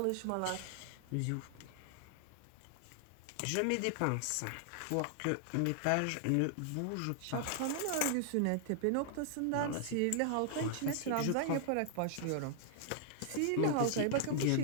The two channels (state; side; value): different; both; correlation 0.00